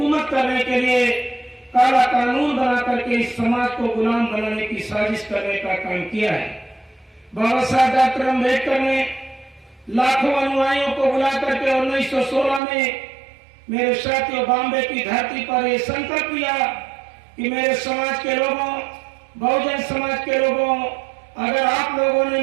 करने के लिए काला कानून बना करके इस समाज को गुलाम बनाने की साजिश करने का काम किया है। बाबा साहब डॉक्टर अम्बेडकर ने लाखों अनुयायियों को बुला करके 1916 में मेरे साथियों बॉम्बे की धरती पर यह संकल्प लिया कि मेरे समाज के लोगों, बहुजन समाज के लोगों, अगर आप लोगों ने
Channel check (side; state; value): left; drops out; at 12.6 s